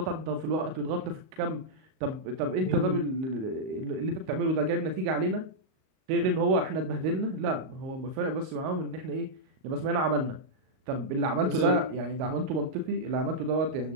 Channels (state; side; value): late; left; 38 ms